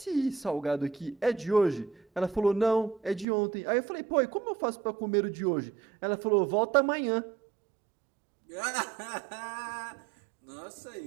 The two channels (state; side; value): drops out; left; at 3.2 s